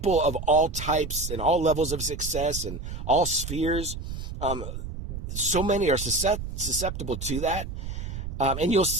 of all types and all levels of success and all spheres, so many are susceptible to that. And you'll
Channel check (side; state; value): right; noise; rumble, 7 dB below the sound